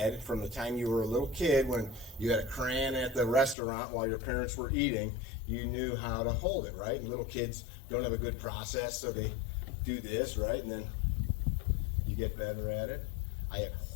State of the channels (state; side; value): drops out; right; at 3.6 s